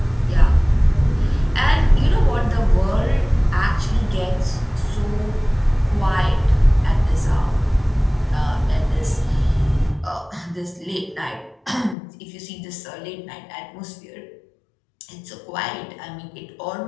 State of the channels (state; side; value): drops out; right; at 12.0 s